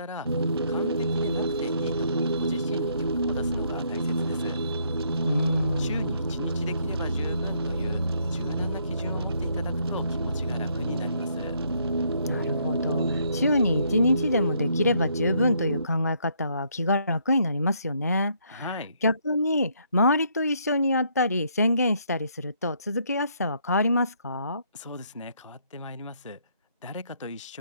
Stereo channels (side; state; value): both; inverted; correlation -0.70